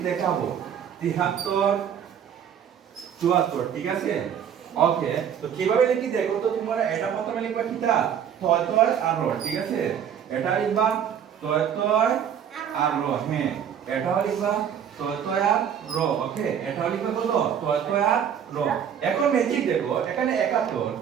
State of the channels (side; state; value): left; quieter; 8.6 dB